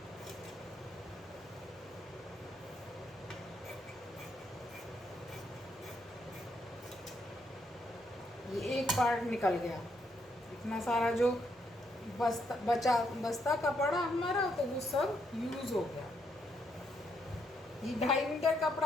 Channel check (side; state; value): both; normal; correlation 0.75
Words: एक पार्ट निकल गया, इतना सारा जो बस्ता कपड़ा हमारा, तो वो सब यूज हो गया। ये 2.5 मीटर